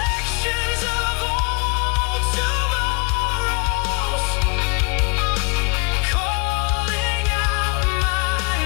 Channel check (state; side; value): quieter; right; 32.4 dB